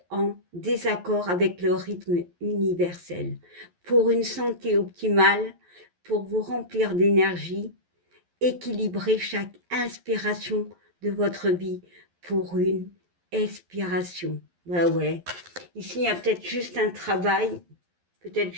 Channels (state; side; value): late; left; 11 ms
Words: en désaccord avec le rythme universel. Pour une santé optimale, pour vous remplir d'énergie, équilibrez chaque inspiration de votre vie pour une expiration. Bah ouais. Ici, il y a peut-être juste un travail, peut-être